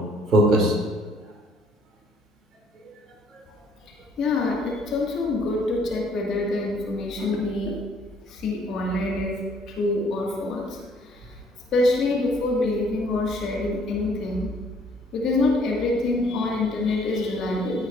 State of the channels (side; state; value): both; normal; correlation 0.62